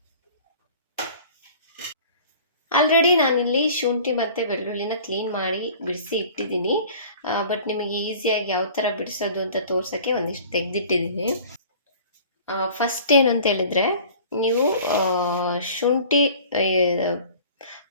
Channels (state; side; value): inverted; both; correlation -0.46